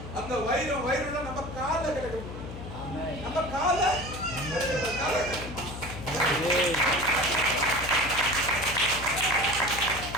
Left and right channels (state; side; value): noise; left; hum, 10 dB below the sound